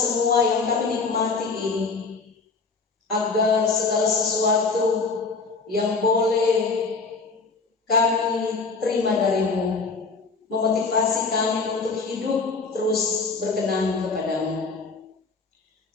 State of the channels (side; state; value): right; quieter; 4.3 dB